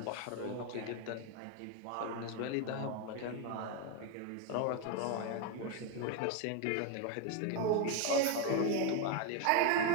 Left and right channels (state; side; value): different; both; correlation 0.02